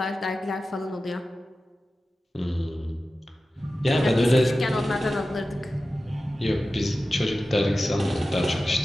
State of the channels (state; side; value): normal; both; correlation 0.94